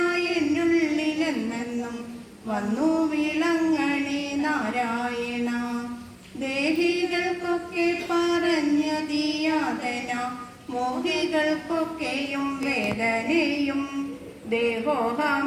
എന്നുള്ളിലെന്നെന്നും വന്നു വീളങ്ങണി നാരായണ. ദേഹികൾക്കൊക്കെ പറഞ്ഞതിയാതന മോഹികൾക്കൊക്കെയും വേദനയും.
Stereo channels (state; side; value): identical; both; correlation 1.00